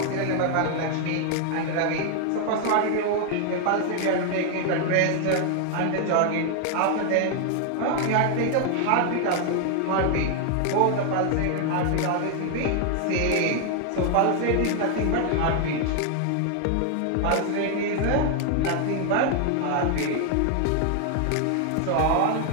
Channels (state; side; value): different; both; correlation 0.00